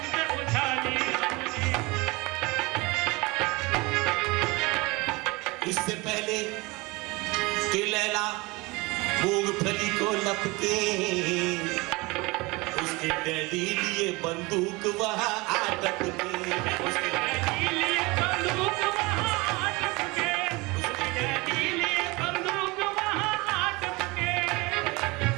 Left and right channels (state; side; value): quieter; left; 24.3 dB